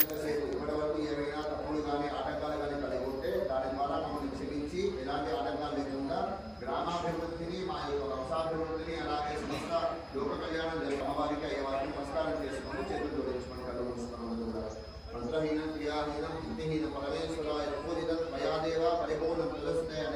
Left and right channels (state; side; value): identical; both; correlation 1.00